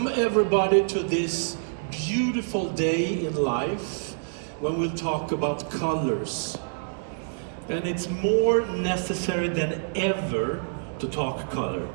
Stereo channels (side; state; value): left; silent; digital silence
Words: everybody to this beautiful day in life when we'll talk about colors. And it's more necessary than ever to talk color.